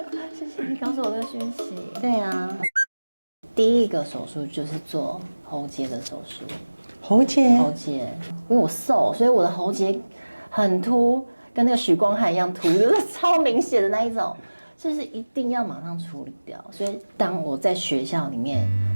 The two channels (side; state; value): both; inverted; correlation -1.00